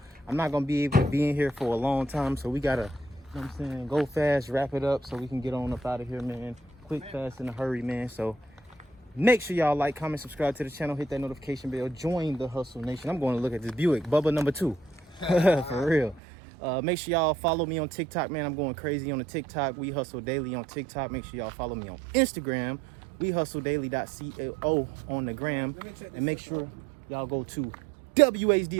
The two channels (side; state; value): left; drops out; at 16.2 s